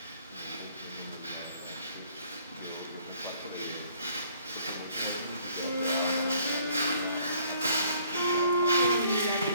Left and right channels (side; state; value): both; inverted; correlation -0.61